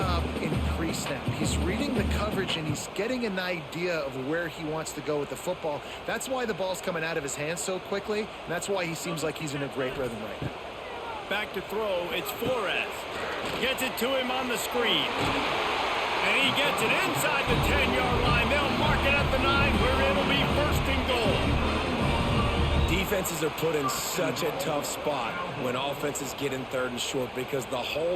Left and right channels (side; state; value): both; identical; correlation 1.00